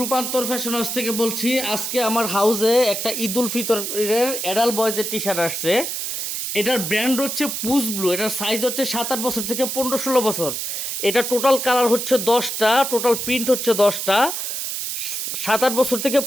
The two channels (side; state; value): right; noise; hiss, 3 dB below the sound